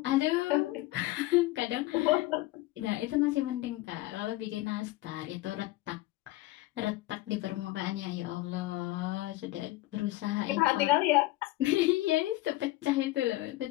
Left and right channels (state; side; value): quieter; right; 18.1 dB